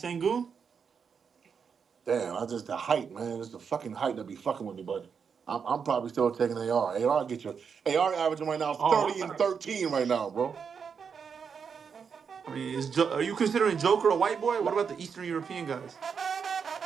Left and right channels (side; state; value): left; quieter; 6.4 dB